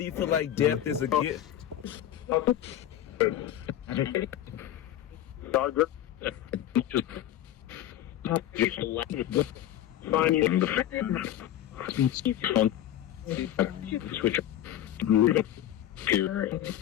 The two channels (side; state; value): right; quieter; 12.0 dB